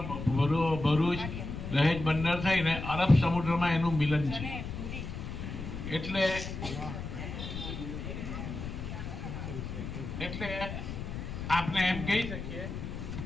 ભરૂચ, દહેજ બંદર થઈને અરબ સમુદ્રમાં એનું મિલન છે. એટલે આપણે એમ કહી શકીએ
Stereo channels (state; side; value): noise; left; rumble, 7 dB below the sound